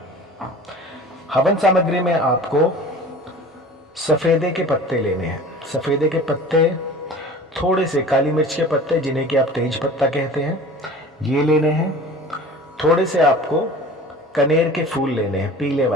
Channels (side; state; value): both; normal; correlation 0.41